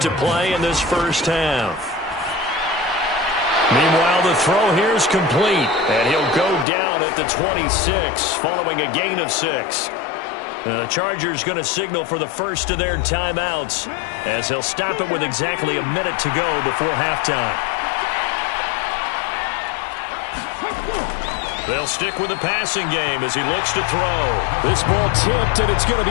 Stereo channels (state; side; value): drops out; right; at 6.7 s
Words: play in this first half. Meanwhile, the throw here is complete. And he'll go down at the 26 following a gain of 6. The Chargers going to signal for the first of their timeouts, as he'll stop it with exactly a minute to go before halftime. They'll stick with the passing game as he looks to throw. This ball tipped, and it's going to